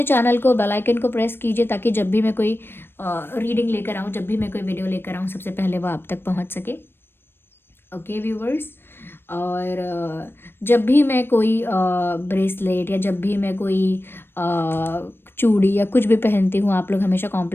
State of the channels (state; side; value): late; right; 0.10 ms